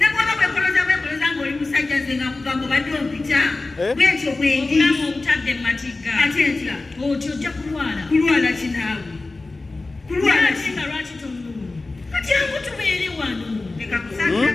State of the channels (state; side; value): quieter; right; 3.3 dB